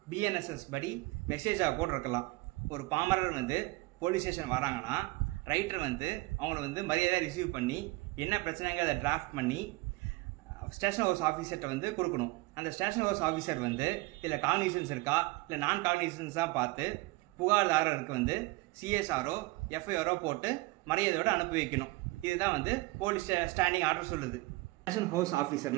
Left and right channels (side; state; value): left; quieter; 21.9 dB